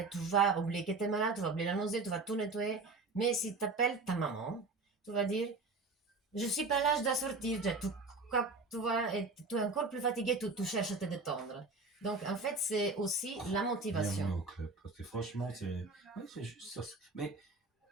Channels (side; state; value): left; quieter; 3.7 dB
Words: tu vas oublier que t'es malade, tu vas oublier la nausée, tu vas tout nettoyer. Mais si t'appelles ta maman, tu vas dire je suis pas là, je dois sortir. Tu vois, et tu es encore plus fatigué, tu cherches à te détendre. Donc en fait, c'est aussi la Bienvenue motivation. au club. Parce que franchement, oui, c'est juste ça. Mais